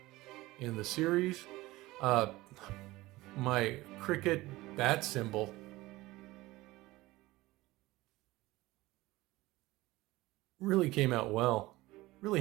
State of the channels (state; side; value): quieter; left; 19.1 dB